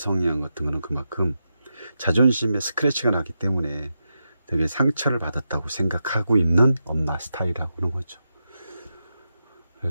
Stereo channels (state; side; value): inverted; both; correlation -0.88